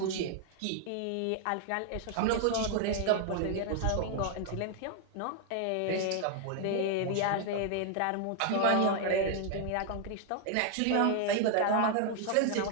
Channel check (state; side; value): different; both; correlation 0.00